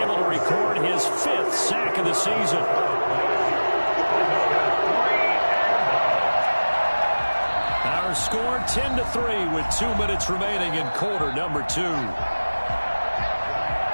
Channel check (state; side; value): inverted; both; correlation -1.00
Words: able to record his 5th sack of the season. Our score 10-3 with 2 minutes remaining in quarter number 2.